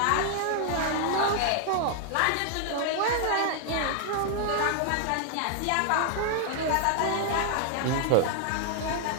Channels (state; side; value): different; both; correlation 0.00